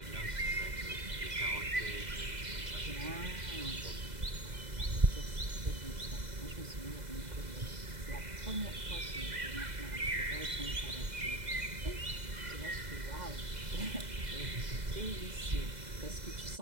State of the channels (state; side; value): late; left; 2.0 ms